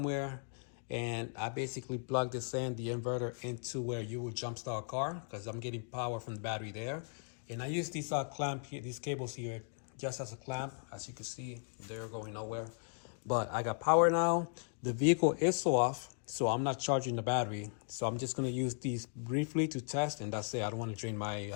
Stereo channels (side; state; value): right; silent; 53 dB below the other